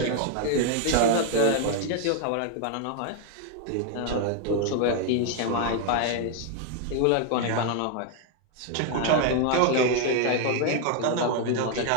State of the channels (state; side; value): different; both; correlation 0.01